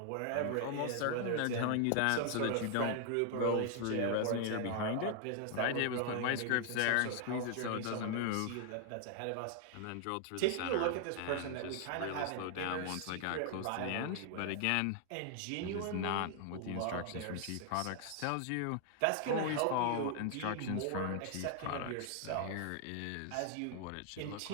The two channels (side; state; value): both; different; correlation 0.00